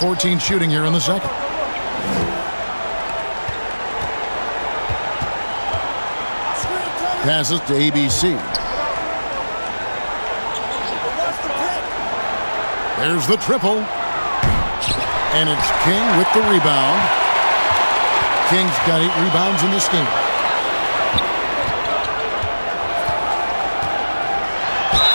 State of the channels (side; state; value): both; inverted; correlation -1.00